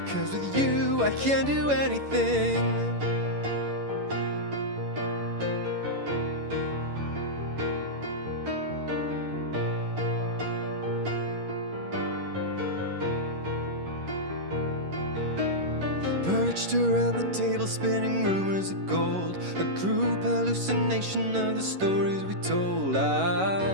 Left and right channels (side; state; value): left; late; 11 ms